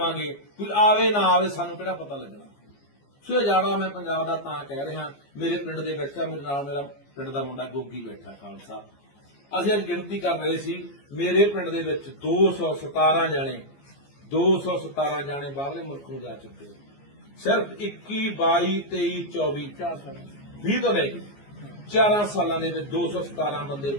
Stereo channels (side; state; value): right; late; 14 ms